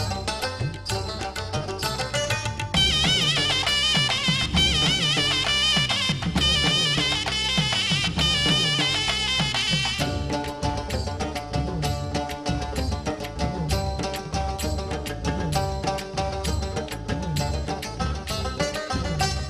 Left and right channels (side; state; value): both; identical; correlation 1.00